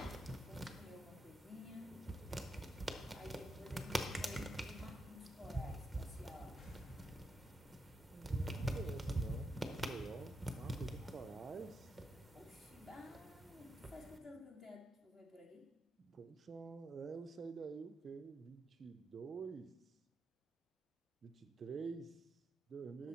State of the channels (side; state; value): both; normal; correlation 0.84